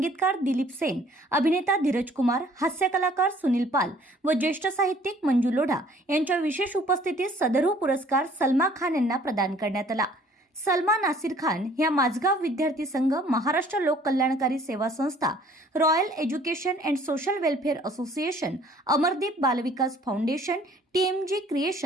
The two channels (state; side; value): normal; both; correlation 0.56